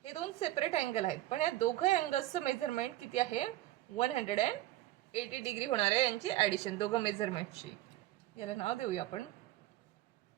हे दोन सेपरेट अँगल आहेत पण या दोघं अँगल्सचं मेजरमेंट किती आहे, 180 डिग्री होणार आहे यांची ॲडिशन दोघं मेजरमेंटची. याला नाव देऊया आपण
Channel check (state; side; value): quieter; left; 15.7 dB